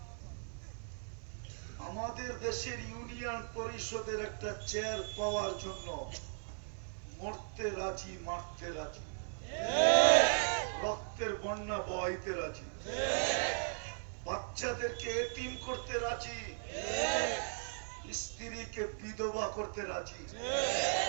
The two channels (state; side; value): silent; left; 53 dB below the other